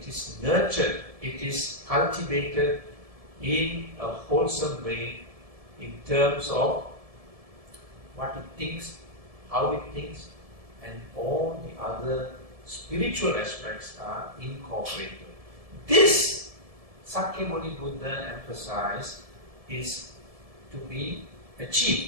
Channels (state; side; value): late; left; 1.7 ms